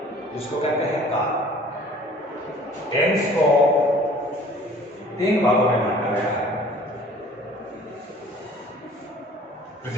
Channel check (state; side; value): normal; both; correlation 0.50